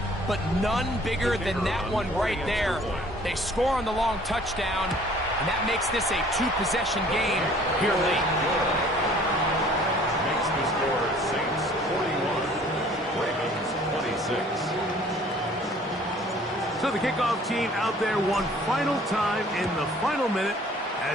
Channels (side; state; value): both; normal; correlation 0.54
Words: but none bigger than that one right there. They score on the long touchdown, and that makes this a 2-possession game here late. Makes the score Saints 41, Ravens 26. So the kickoff team out there one final time in the final minute